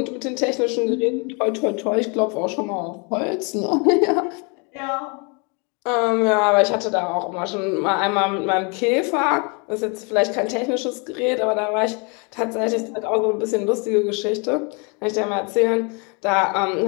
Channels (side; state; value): right; quieter; 33.1 dB